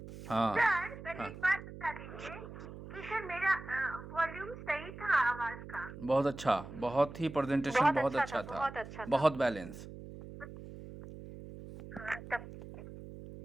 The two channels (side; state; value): right; noise; hum, 13 dB below the sound